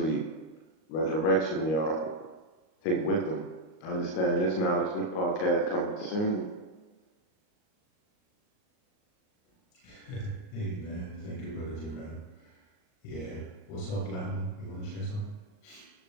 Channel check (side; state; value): right; late; 38 ms